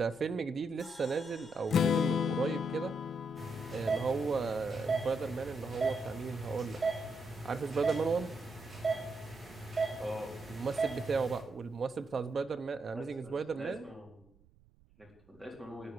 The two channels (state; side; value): noise; right; rumble, 28 dB below the sound